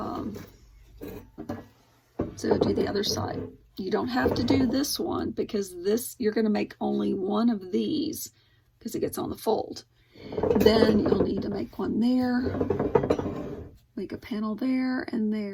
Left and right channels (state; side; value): identical; both; correlation 1.00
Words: do the other side. You don't have to do this one, because this, you're going to make only one of these because it gets on the fold. Then you'll need to make one there, make a panel there and